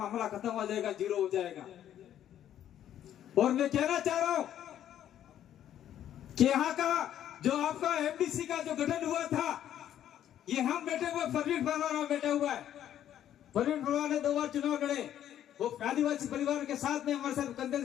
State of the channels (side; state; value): right; quieter; 11.0 dB